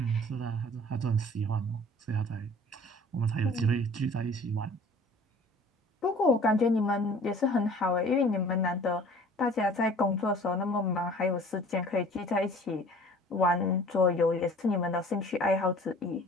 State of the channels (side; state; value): both; normal; correlation 0.48